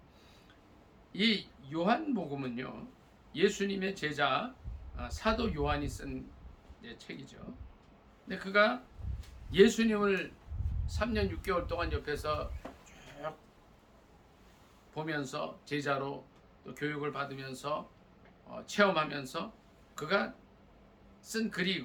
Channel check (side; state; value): both; identical; correlation 1.00